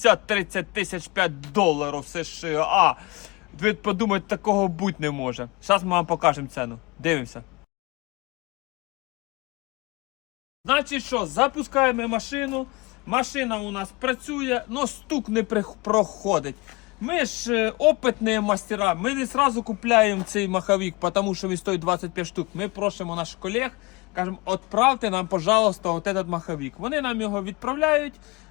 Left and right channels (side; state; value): right; quieter; 25.3 dB